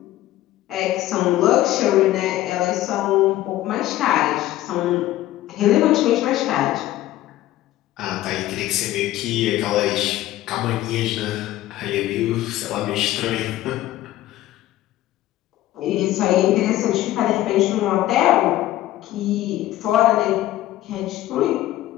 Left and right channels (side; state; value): right; quieter; 14.8 dB